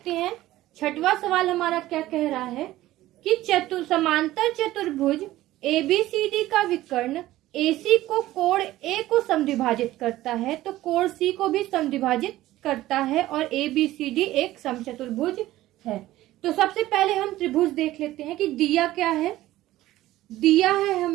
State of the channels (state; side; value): quieter; left; 15.7 dB